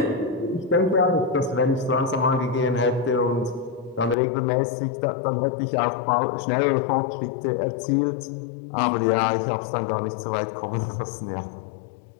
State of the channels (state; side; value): drops out; right; at 4.2 s